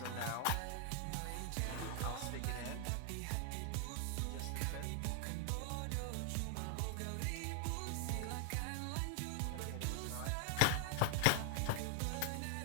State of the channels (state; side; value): different; both; correlation 0.00